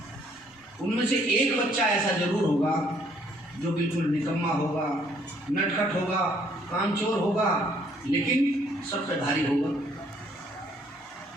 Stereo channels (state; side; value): normal; both; correlation 0.65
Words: उनमें से एक बच्चा ऐसा जरूर होगा जो बिल्कुल निकम्मा होगा, नटखट होगा, कामचोर होगा, लेकिन सबसे भारी होगा।